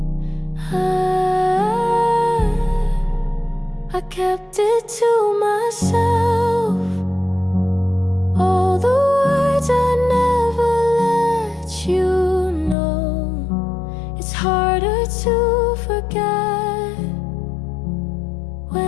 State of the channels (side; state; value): right; drops out; at 12.8 s